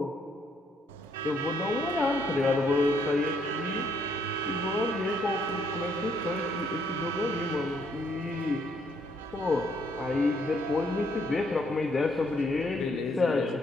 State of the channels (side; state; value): both; normal; correlation 0.70